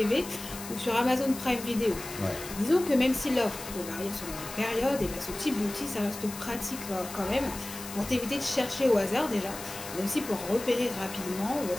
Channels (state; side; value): noise; left; hiss, 11 dB below the sound